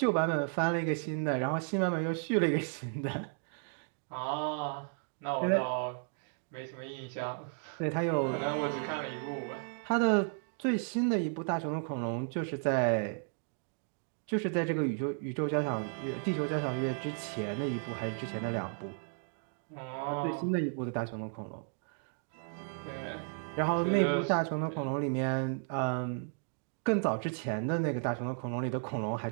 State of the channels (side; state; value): left; silent; 55 dB below the other